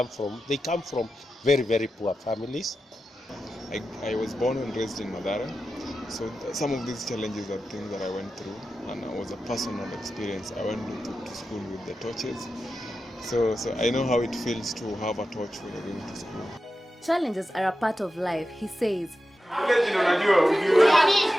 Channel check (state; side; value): normal; both; correlation 0.91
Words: from very, very poor families. I was born and raised in Mathare, so some of these challenges are things that I went through, and it was a personal experience. I went to school with the torches, so I know how it feels to have a torch when you're going to school. Challenges are a part of life, he says.